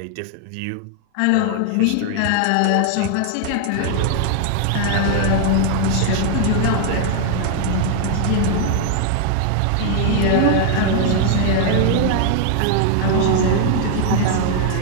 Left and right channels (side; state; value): both; different; correlation 0.00